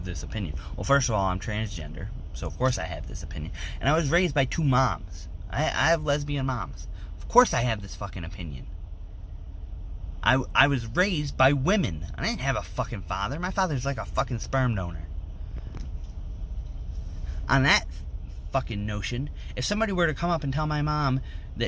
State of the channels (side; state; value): both; identical; correlation 1.00